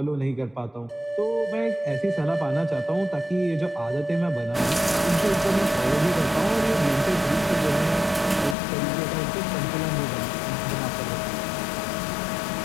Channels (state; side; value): drops out; right; at 8.6 s